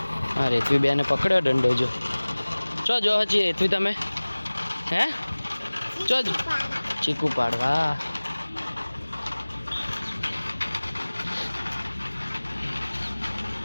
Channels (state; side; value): inverted; both; correlation -1.00